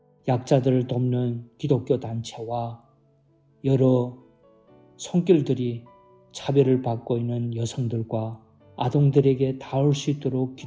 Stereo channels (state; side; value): identical; both; correlation 1.00